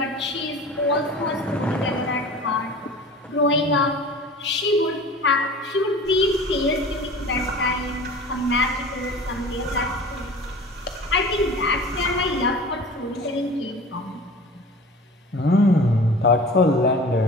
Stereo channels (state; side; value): normal; both; correlation 0.40